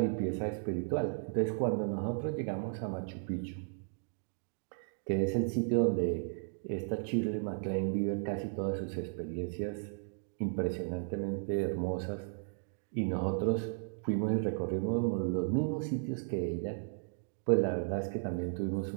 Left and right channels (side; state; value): left; silent; digital silence